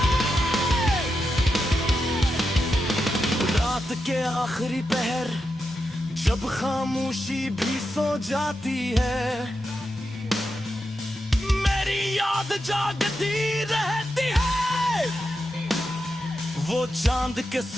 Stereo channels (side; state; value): both; normal; correlation 0.87